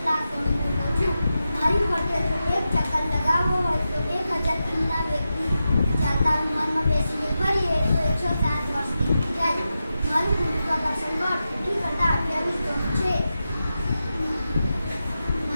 લાખ ગણો મોટો છું. મારી ફરતે જો એક ચક્કર લગાવવો હોય તો 1000 કિલોના વ્યક્તિ ચાલતા વિમાનમાં બેસીને ફરીએ તો 107 વર્ષ નીકળી જાય. મારું ગુરુત્વાકર્ષણ બળ પૃથ્વી કરતાં 28 ગણું છે.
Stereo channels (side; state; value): both; inverted; correlation -0.90